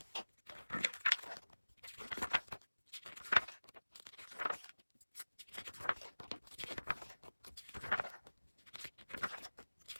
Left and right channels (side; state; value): both; inverted; correlation -1.00